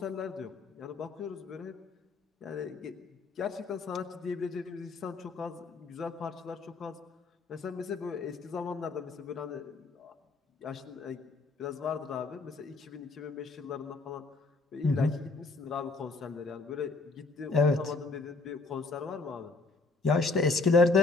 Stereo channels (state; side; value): quieter; right; 3.7 dB